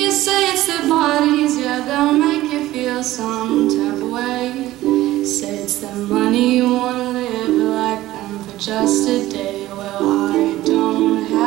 say it's their bodies, yeah, they'll make you feel some type of way. Say it's their money, you wanna live like them for just a day. Well, I don't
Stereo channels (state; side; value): quieter; left; 15.9 dB